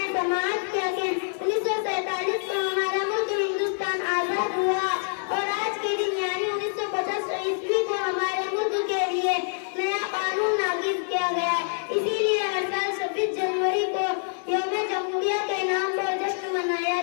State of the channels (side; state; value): right; silent; digital silence